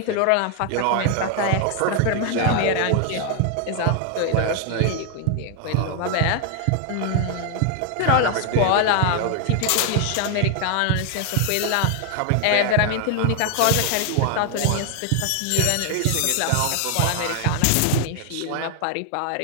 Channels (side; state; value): both; different; correlation 0.00